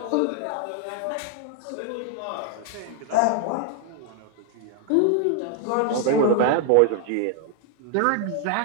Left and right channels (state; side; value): different; both; correlation 0.00